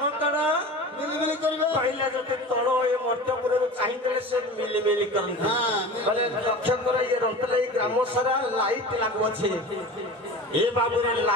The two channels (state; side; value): normal; both; correlation 0.35